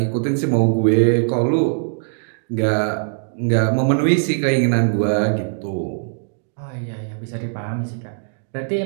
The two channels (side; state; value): left; silent; digital silence